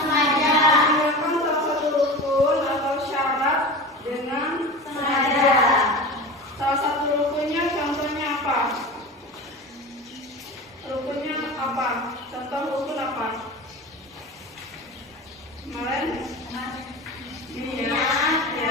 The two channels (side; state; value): both; normal; correlation 0.31